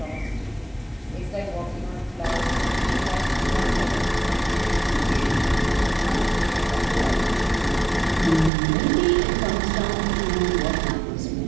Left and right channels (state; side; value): drops out; left; at 8.5 s